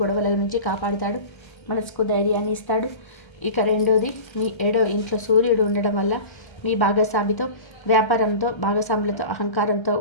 గొడవల నుంచి కాపాడుతాడు. మనసుకు ధైర్యాన్ని ఇస్తాడు. ఇక 2వది, మీ 7వ ఇంట్లో సూర్యుడు ఉండడం వల్ల మీ భాగస్వామితో, వ్యాపారంతో, భాగస్వాములతో అహంకారంతో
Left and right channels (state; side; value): late; right; 1.3 ms